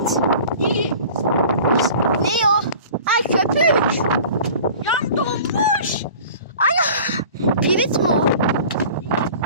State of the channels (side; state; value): both; inverted; correlation -0.43